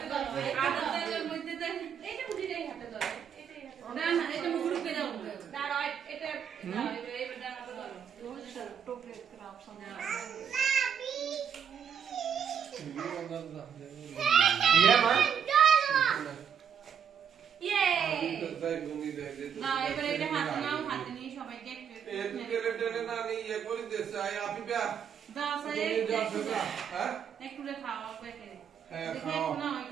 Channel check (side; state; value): left; quieter; 7.8 dB